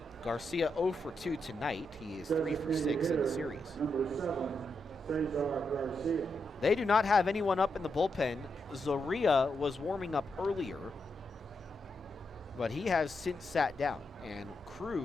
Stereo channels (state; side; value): normal; both; correlation 0.84